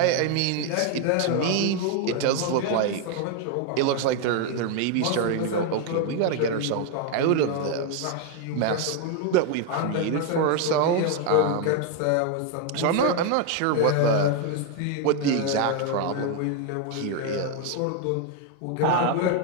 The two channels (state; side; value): different; both; correlation 0.01